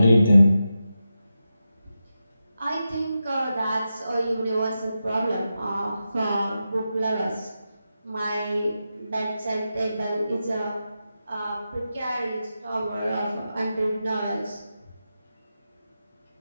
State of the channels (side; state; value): both; inverted; correlation -0.89